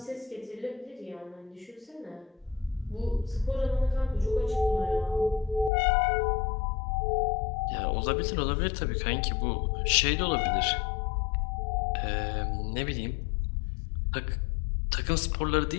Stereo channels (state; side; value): drops out; right; at 5.7 s